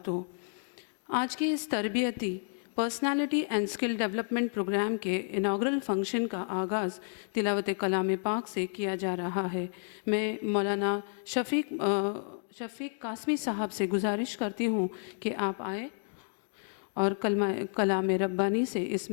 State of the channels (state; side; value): silent; right; 57 dB below the other